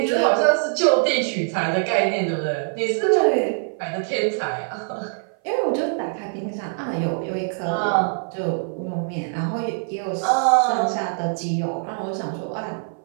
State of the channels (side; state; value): left; silent; 57 dB below the other